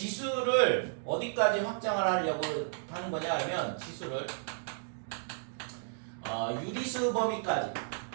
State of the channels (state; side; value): silent; left; digital silence